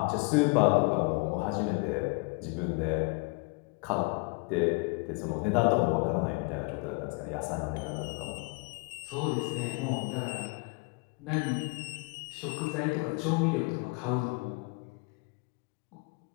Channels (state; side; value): quieter; right; 29.9 dB